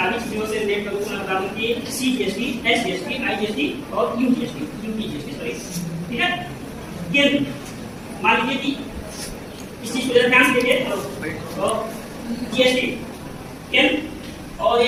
चीजों से रिलेट करूंगा, मैं बता दूं कि सीजीएसटी, एसजीएसटी, आईजीएसटी और यूजीएसटी, यूपीजीएसटी सॉरी, ठीक है। केंद्र मान लीजिए कि इस चीज को ध्यान से देखिए, तो जीएसटी केंद्र और ये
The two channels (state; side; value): identical; both; correlation 1.00